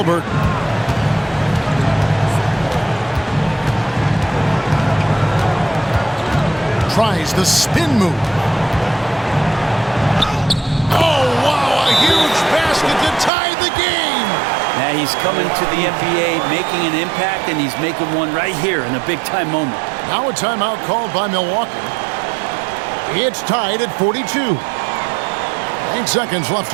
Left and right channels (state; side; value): drops out; left; at 13.3 s